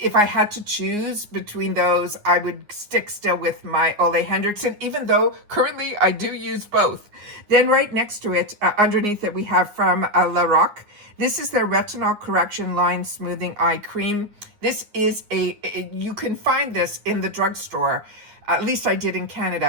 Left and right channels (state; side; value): late; left; 9.6 ms